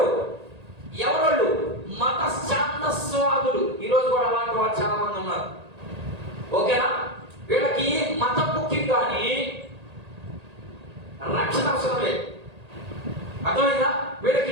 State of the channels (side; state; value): left; late; 1.8 ms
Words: ఎవరు? మత ఛాందస్వాదులు. ఈరోజు కూడా అలాంటి వాళ్ళు చాలా మంది ఉన్నారు. ఓకేనా? వీళ్ళకి మతం ముఖ్యం కానీ రక్షణ అవసరం లేదు. అర్థమైందా?